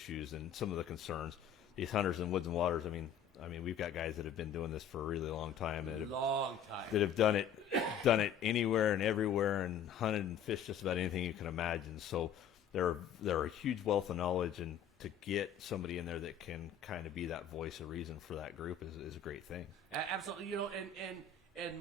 and some of the concerns. These hunters in Woods and Waters, I mean, we've got guys that have been doing this for a really long time that have done it anywhere and everywhere and hunted and fished just about anything you can imagine. So they're a huge wealth of knowledge, and to get somebody in there that can kind of be that voice of reason for that group is a great thing. Absolutely, and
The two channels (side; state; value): right; quieter; 7.6 dB